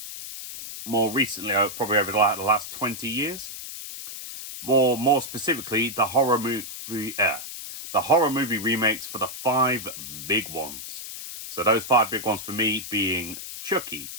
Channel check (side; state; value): left; noise; hiss, 10 dB below the sound